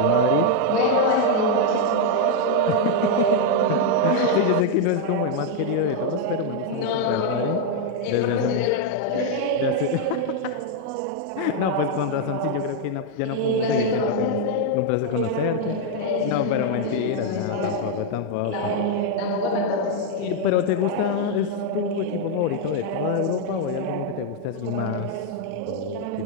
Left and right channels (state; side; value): different; both; correlation 0.00